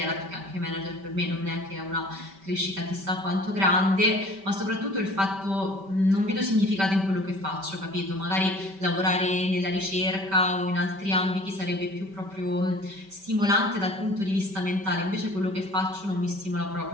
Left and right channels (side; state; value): left; late; 5.2 ms